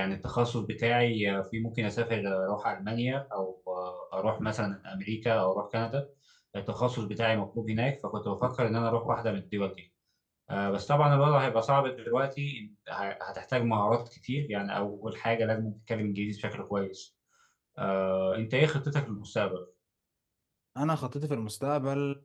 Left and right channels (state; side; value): identical; both; correlation 1.00